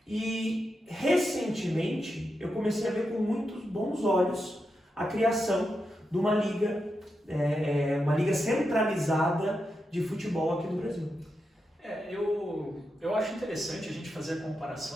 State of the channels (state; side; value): normal; both; correlation 0.87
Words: E recentemente eu comecei a ver com muitos bons olhos a criação de uma liga centralizada de futebol aqui no Brasil. Eu acho interessante a gente fazer a